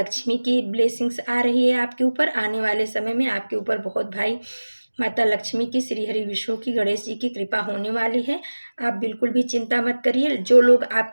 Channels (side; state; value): both; inverted; correlation -1.00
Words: की ब्लेसिंग्स आ रही है आपके ऊपर। आने वाले समय में आपके ऊपर बहुत भाई माता लक्ष्मी की, श्री हरि विष्णु की, गणेश जी की कृपा होने वाली है। आप बिल्कुल भी चिंता मत करिए। जो लोग